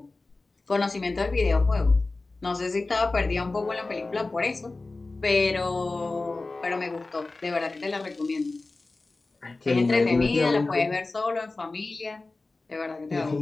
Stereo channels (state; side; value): quieter; right; 3.4 dB